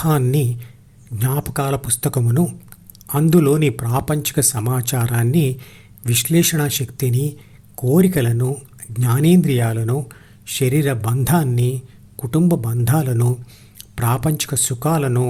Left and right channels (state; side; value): identical; both; correlation 1.00